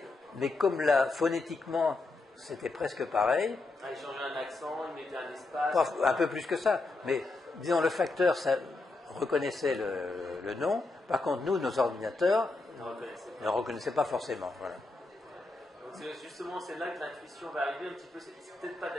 mais comme là, phonétiquement, c'était presque pareil. Ils changeaient un accent, ils mettaient un espace. Un peu plus que ça, mais disons le facteur ça reconnaissait le nom. Par contre, nous, nos ordinateurs ne reconnaissaient pas forcément. Voilà. Donc justement, c'est là que l'intuition va arriver un petit peu. C'est peut-être pas de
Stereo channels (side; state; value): right; quieter; 3.3 dB